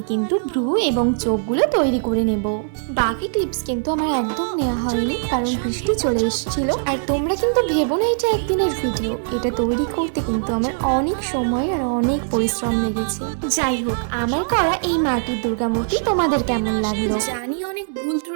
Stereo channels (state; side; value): silent; left; digital silence